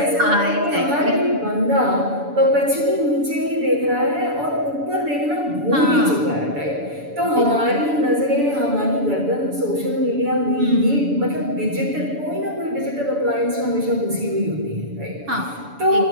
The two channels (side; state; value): left; late; 7.0 ms